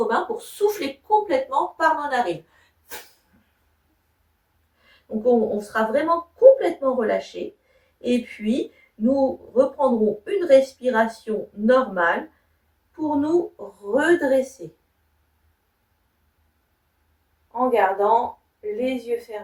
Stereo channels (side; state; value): both; identical; correlation 1.00